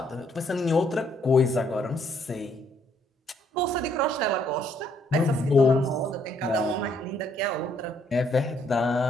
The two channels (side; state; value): both; normal; correlation 0.69